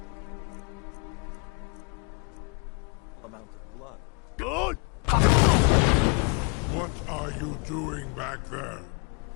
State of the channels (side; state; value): right; quieter; 31.8 dB